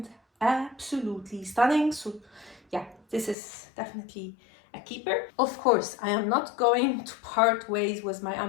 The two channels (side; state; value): right; drops out; at 3.4 s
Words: absolutely stunning. So yeah, this is definitely a keeper. Of course, I am not going to part ways with my